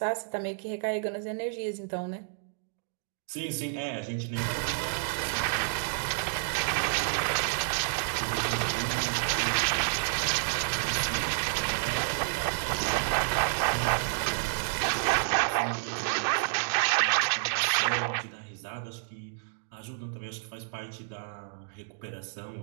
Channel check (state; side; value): silent; left; digital silence